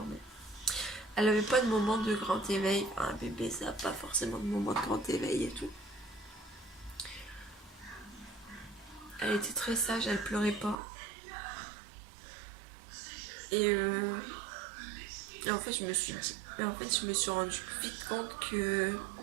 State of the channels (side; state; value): left; drops out; at 10.8 s